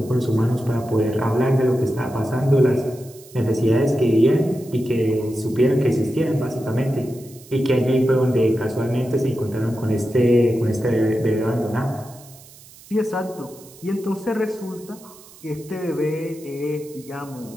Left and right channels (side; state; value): right; noise; hiss, 22 dB below the sound